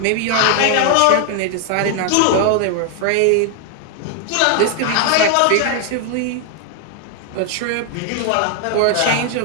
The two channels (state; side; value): different; both; correlation 0.00